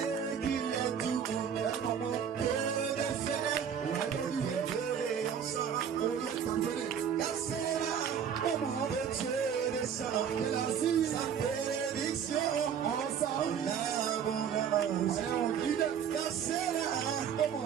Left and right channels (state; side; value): quieter; left; 7.9 dB